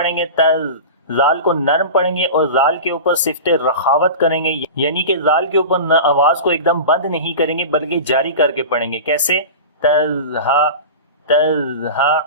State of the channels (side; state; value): both; inverted; correlation -0.30